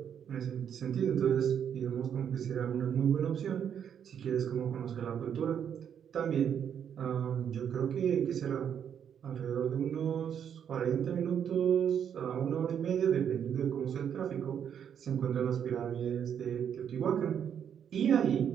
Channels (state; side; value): quieter; left; 8.5 dB